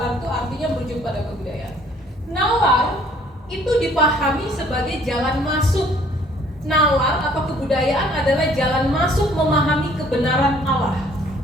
itu artinya merujuk pada kebudayaan. Nalar itu dipahami sebagai jalan masuk. Nalar atau kebudayaan adalah jalan masuk memahami kebenaran Allah.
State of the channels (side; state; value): both; normal; correlation 0.59